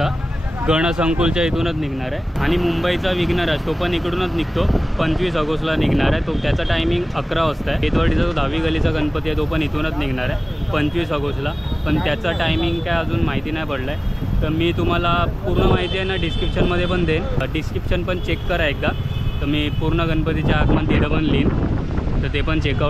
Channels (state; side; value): normal; both; correlation 0.98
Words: गणसंकुलच्या इथूनच निघणार आहे. आणि मुंबईचा विघ्नराज तो पण इकडूनच निघतो 25 ऑगस्टला निघणार आहे. तो त्याचा टायमिंग 11 वाजता आहे. केतवाडीचा जो 10वी गलीचा गणपती आहे तो पण इथूनच निघणार आहे 25 ऑगस्टला. पण त्याचा टायमिंग काय अजून माहिती नाही पडलं आहे. तर मी तुम्हाला पूर्ण माहिती आहे ना डिस्क्रिप्शनमध्ये पण देईन. डिस्क्रिप्शन पण चेक करा एकदा. तर मी पूर्ण गणपतीचे आगमन तिथं पण लिहीन. तर ते पण